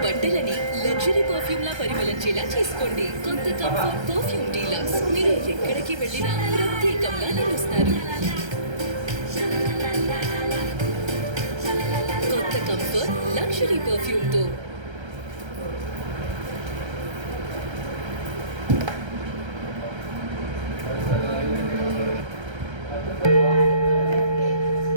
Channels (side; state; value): left; late; 1.3 ms